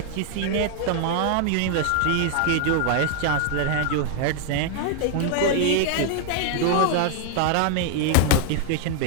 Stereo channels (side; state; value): both; different; correlation 0.00